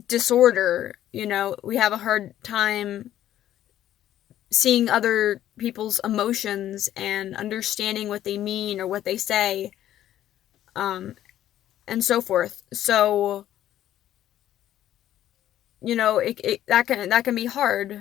disorder. We have a hard time seeing other people's emotions and understanding what they mean or what they say, um, and so forth. So, that can be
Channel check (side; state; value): right; quieter; 12.2 dB